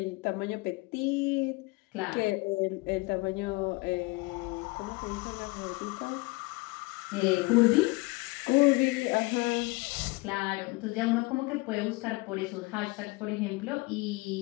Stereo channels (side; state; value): right; quieter; 24.5 dB